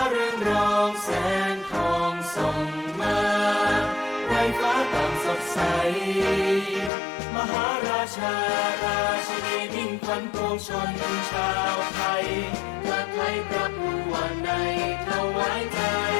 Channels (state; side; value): drops out; right; at 6.9 s